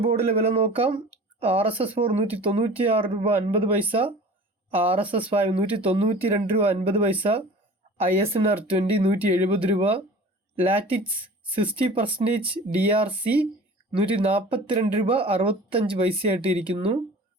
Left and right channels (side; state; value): both; normal; correlation 0.41